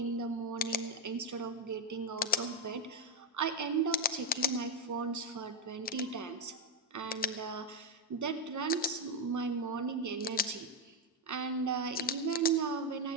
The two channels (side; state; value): both; normal; correlation 0.05